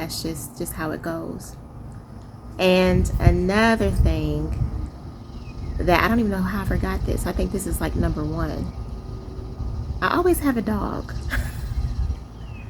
just how it goes. And another thing that I don't even know how I forgot this. I think this is like number 1. I always have a dog.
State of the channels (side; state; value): both; identical; correlation 1.00